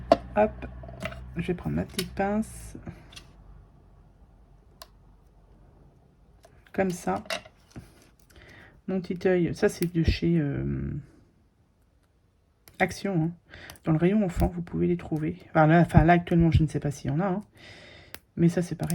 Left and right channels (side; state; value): both; identical; correlation 1.00